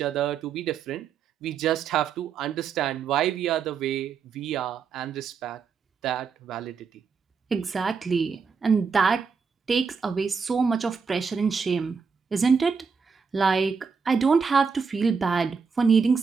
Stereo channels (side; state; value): left; quieter; 5.6 dB